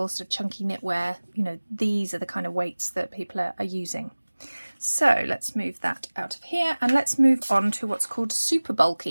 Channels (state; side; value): inverted; both; correlation -1.00